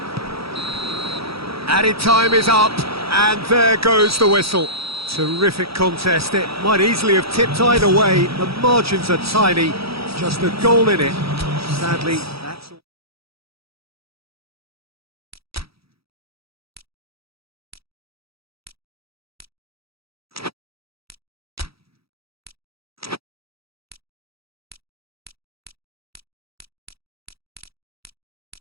Added time is up, and there goes the whistle. Terrific contest. It might easily have tipped either way. The margins are tiny, just a goal in it. Sadly, that's all.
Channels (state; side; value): late; left; 0.76 ms